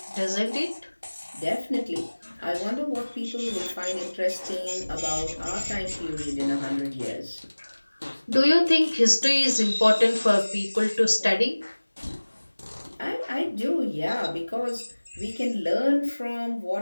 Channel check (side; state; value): both; inverted; correlation -1.00